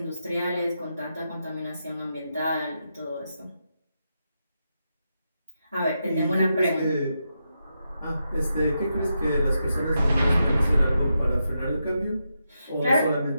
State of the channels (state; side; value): inverted; both; correlation -0.85